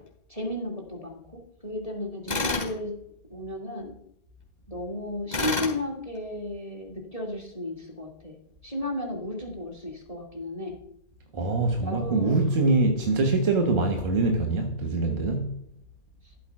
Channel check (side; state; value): right; late; 2.0 ms